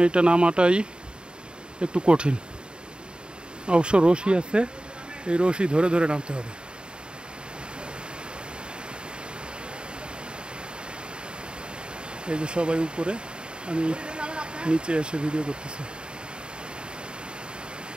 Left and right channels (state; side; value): late; left; 0.050 ms